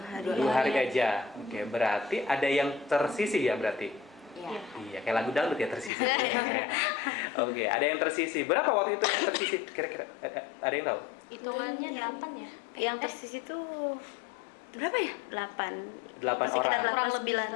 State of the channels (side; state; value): right; drops out; at 5.9 s